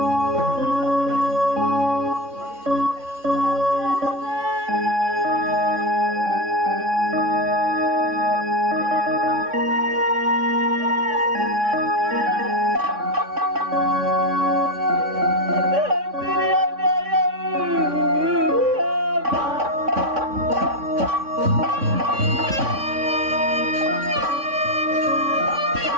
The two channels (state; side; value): late; left; 3.6 ms